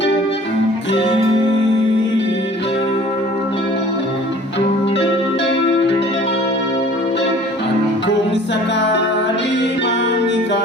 Kung sakali mang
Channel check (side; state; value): both; normal; correlation 0.49